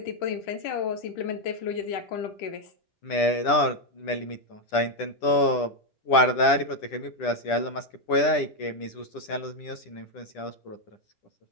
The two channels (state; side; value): late; right; 10 ms